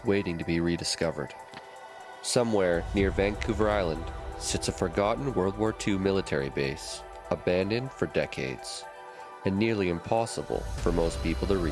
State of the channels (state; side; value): identical; both; correlation 1.00